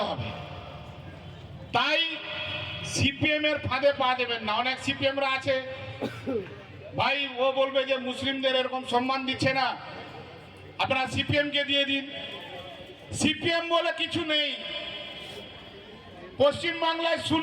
হবে। তাই সিপিএম এর ফাঁদে পা দেবেন না। অনেক সিপিএমরা আছে ভাই, ও বলবে যে মুসলিমদের এরকম সম্মান দিচ্ছে না, আপনারা সিপিএম কে দিয়ে দিন। সিপিএম বলে কিছু নেই, পশ্চিম বাংলায়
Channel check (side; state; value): both; identical; correlation 1.00